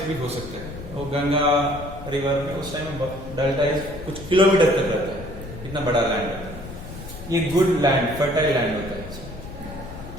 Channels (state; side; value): noise; left; rumble, 12 dB below the sound